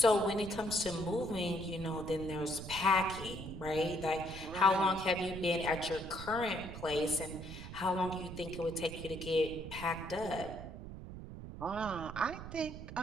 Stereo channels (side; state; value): right; noise; rumble, 10 dB below the sound